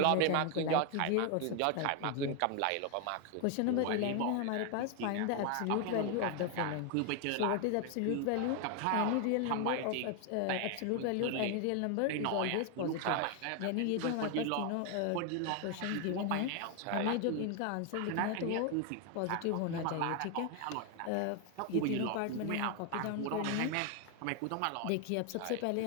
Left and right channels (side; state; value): both; different; correlation 0.00